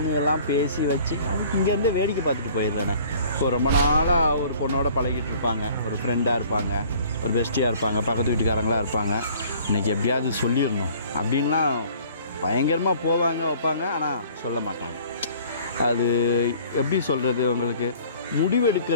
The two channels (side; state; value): both; inverted; correlation -0.53